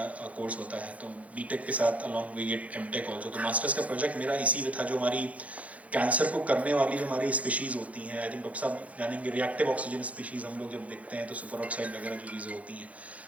कोर्स होता है, तो बीटेक के साथ along we get M Tech also. तो मास्टर्स का प्रोजेक्ट मेरा इसी में था, जो हमारी कैंसर को करने वाली जो हमारी स्पीशीज़ होती हैं, आई थिंक डॉक्टर साहब जानेंगे, रिएक्टिव ऑक्सीजन स्पीशीज़ हम लोग जब देखते हैं तो सुपर ऑक्साइड वगैरह जो चीज़ें होती हैं,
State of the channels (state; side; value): late; left; 0.067 ms